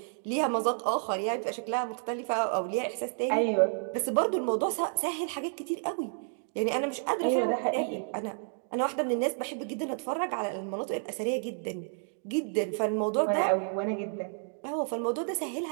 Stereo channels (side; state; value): left; silent; 57 dB below the other